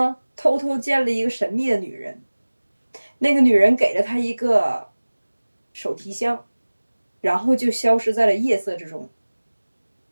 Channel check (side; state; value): both; inverted; correlation -1.00